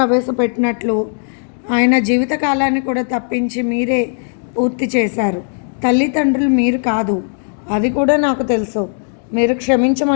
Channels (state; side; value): silent; right; digital silence